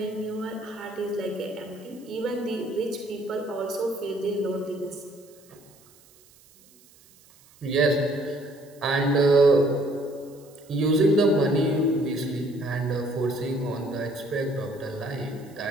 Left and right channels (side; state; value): right; noise; hiss, 27 dB below the sound